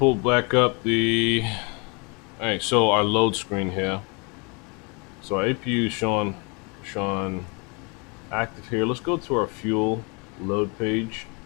back up the. All right, so our load screen here. So our APU is showing active here. Let's go to our fuel load page.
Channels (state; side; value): quieter; right; 32.6 dB